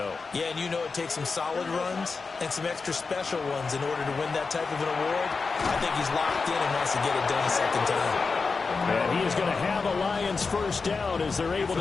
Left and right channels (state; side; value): quieter; right; 4.5 dB